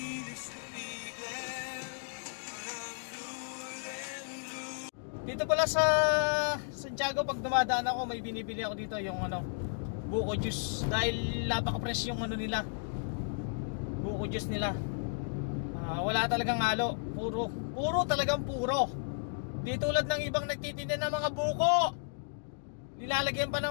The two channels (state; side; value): silent; right; digital silence